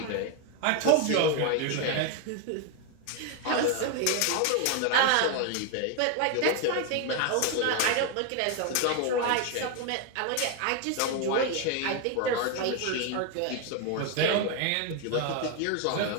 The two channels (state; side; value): different; both; correlation 0.01